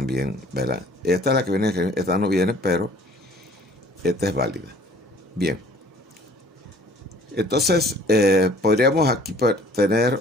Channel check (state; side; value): normal; both; correlation 0.53